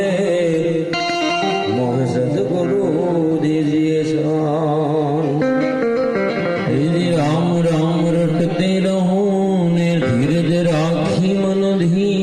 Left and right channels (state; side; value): identical; both; correlation 1.00